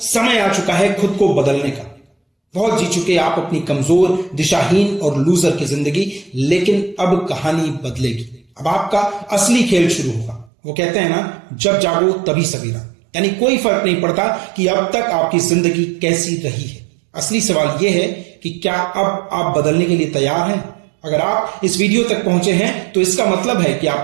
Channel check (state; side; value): drops out; left; at 10.5 s